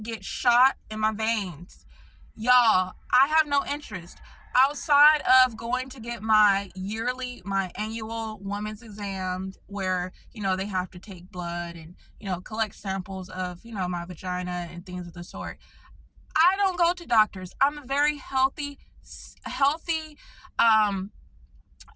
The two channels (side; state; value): both; identical; correlation 1.00